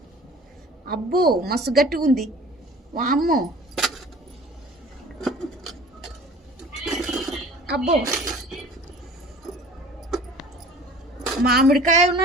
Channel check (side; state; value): both; normal; correlation 0.46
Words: అబ్బో మస్తు గట్టిగా ఉంది. వామ్మో, అబ్బో మామిడికాయ